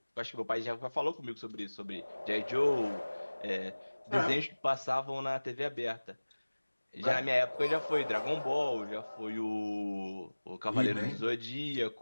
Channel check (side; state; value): both; inverted; correlation -1.00